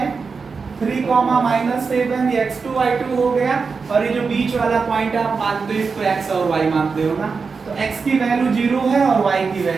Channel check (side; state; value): left; quieter; 5.0 dB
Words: 3,-7, ये x2 y2 हो गया और ये जो बीच वाला पॉइंट आप मानते हो इसको x और y मानते हो ना, तो x की वैल्यू 0 है और y की